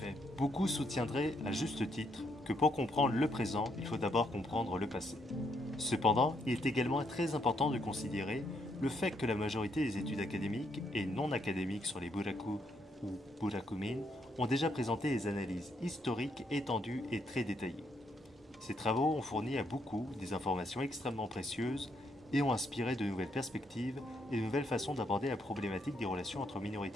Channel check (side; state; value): both; normal; correlation 0.75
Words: beaucoup soutiendraient à juste titre que pour comprendre le présent, il faut d'abord comprendre le passé. Cependant, il est également très important de considérer le fait que la majorité des études académiques et non académiques sur les Buraku ou Burakumin, ont déjà présenté des analyses historiques étendues et très détaillées. Ces travaux ont fourni à beaucoup des informations extrêmement précieuses et ont inspiré de nouvelles perspectives et de nouvelles façons d'aborder la problématique des relations entre